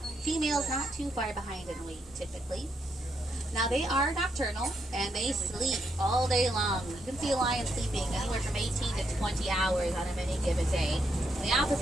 Females not too far behind in weight, typically. Now, they are nocturnal, and they sleep all day long. You can see a lion sleeping anywhere from 18 to 20 hours on any given day. The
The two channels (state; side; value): normal; both; correlation 0.79